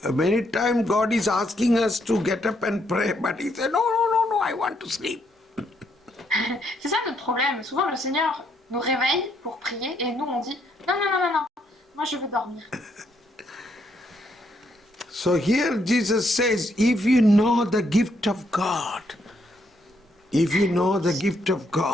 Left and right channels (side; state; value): both; normal; correlation 0.74